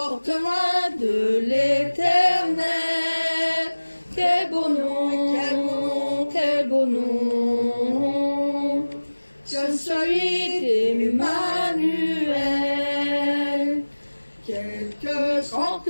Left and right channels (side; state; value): both; inverted; correlation -1.00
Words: loin de l'Éternel. Quel beau nom, quel beau nom, quel beau nom, que celui d'Emmanuel. Quelque grand